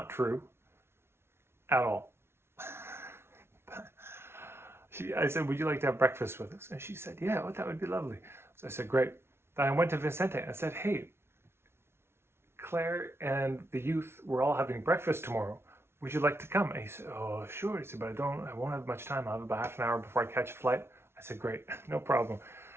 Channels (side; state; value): left; late; 0.12 ms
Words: true at all. I said, would you like to have breakfast with us? And she said, yeah, that would be lovely. So I said, great. Then I went to Vicente and I said, hey, Claire and the youth, we're all having breakfast tomorrow. Would you like to come? And he said, oh, sure. He said, but I won't have much time. I'll have about half an hour before I catch a flight. I said, great, no problem.